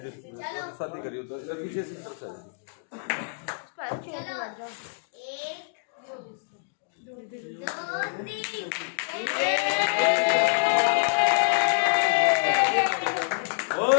शादी करियो तो इधर पीछे से तरफ से।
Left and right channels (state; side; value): silent; right; digital silence